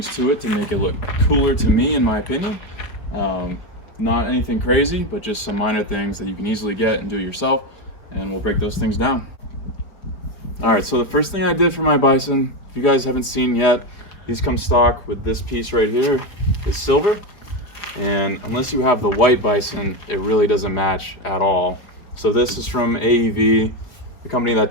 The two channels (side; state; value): right; late; 4.5 ms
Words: to it to make it look cooler to me, in my opinion. Not anything crazy, but just some minor things that you can easily get and do yourself, and we'll break those things down. Alright, so the first thing I did for my Bison, if you guys haven't seen yet, these come stock with this piece right here. It's silver, and unless you have the white Bison, it really doesn't match at all. So this is from AEV, the company that